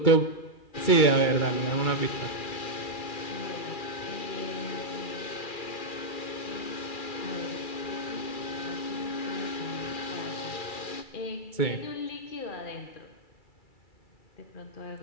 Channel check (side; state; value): right; late; 2.4 ms